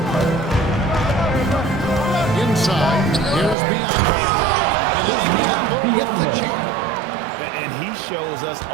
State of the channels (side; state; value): left; drops out; at 3.6 s